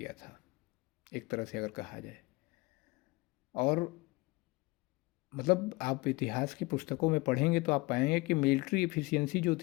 था, एक तरह से अगर कहा जाए। और मतलब आप इतिहास की पुस्तकों में पढ़ेंगे तो आप पाएंगे कि मिलिट्री एफिशिएंसी जो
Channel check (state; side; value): quieter; right; 23.3 dB